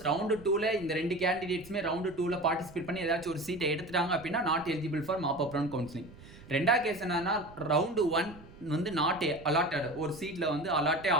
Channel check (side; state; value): right; noise; rumble, 19 dB below the sound